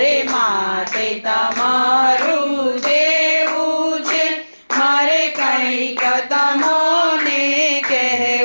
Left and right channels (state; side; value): inverted; both; correlation -1.00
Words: માથે તમારું દેવું છે, મારે કઈક તમોને